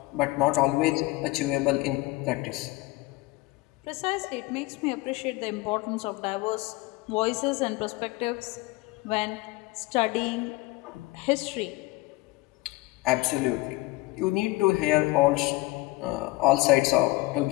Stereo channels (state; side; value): quieter; right; 20.5 dB